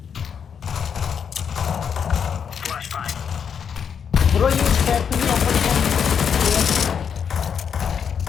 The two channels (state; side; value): quieter; right; 7.2 dB